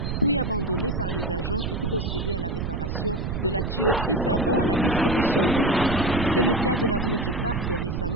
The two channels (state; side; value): noise; right; rumble, 3 dB below the sound